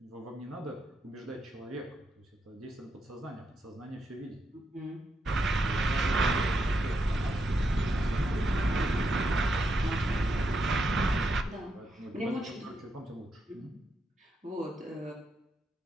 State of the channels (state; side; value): normal; both; correlation 0.82